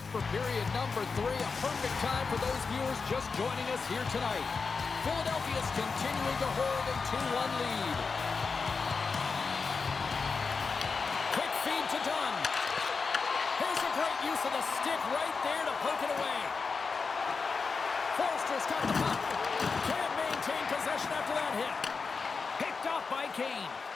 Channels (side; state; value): right; quieter; 4.8 dB